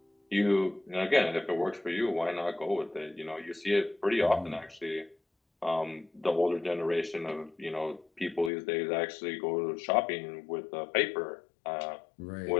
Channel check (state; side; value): drops out; right; at 8.5 s